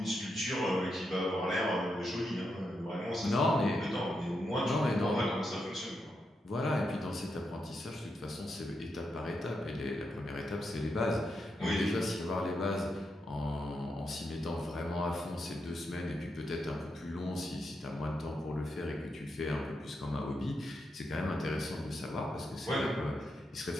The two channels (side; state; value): both; normal; correlation 0.84